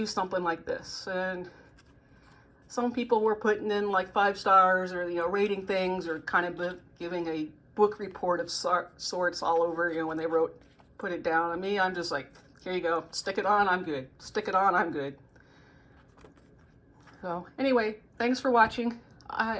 something like this. And some people were putting in like 5 stars or, rating things or kind of giving a book report of sorts all over, when they put it down. And me, I'm just like, here you go. Stick it on, I'm good. Stick it on, I'm good. So anyway, thanks for watching.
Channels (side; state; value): both; identical; correlation 1.00